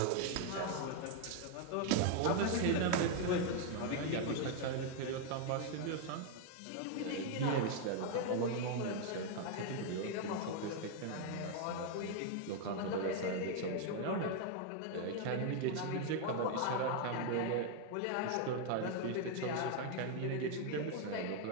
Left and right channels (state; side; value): different; both; correlation 0.01